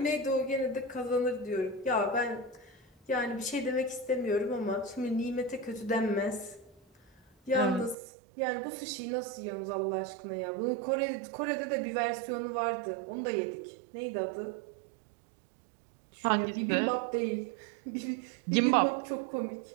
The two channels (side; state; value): left; drops out; at 8.0 s